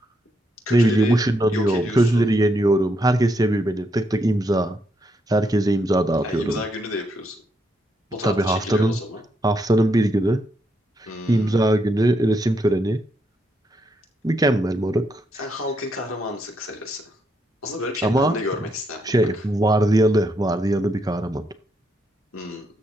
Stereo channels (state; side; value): normal; both; correlation 0.77